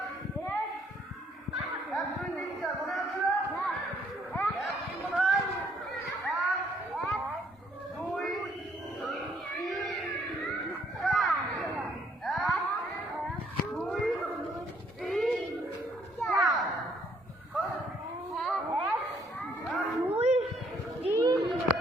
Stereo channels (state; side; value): normal; both; correlation 0.66